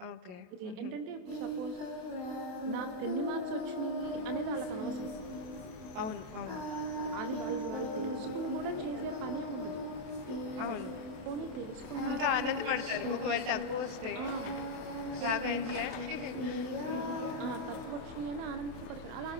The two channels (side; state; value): left; late; 28 ms